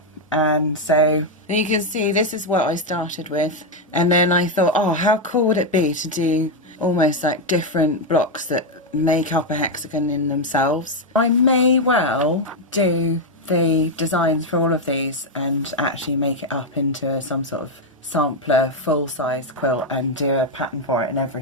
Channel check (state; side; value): normal; both; correlation 0.03